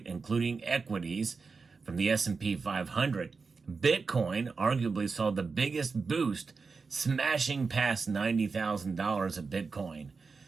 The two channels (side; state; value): left; quieter; 4.7 dB